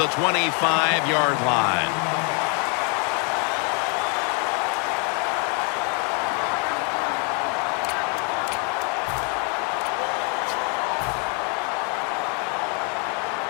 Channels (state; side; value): quieter; right; 37.2 dB